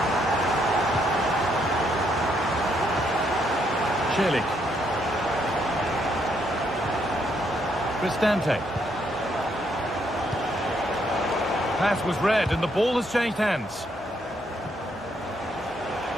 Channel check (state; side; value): normal; both; correlation 0.73